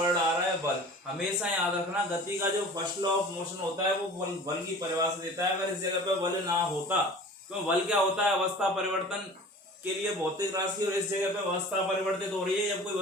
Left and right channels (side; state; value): both; normal; correlation 0.41